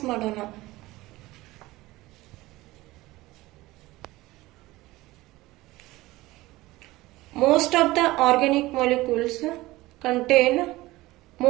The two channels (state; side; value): quieter; left; 18.9 dB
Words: ಮಾಡೋಣ. Most of the organic molecules contain